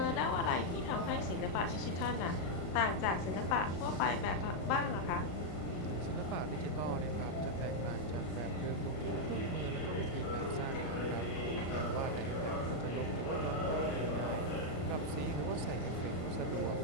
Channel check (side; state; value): right; late; 34 ms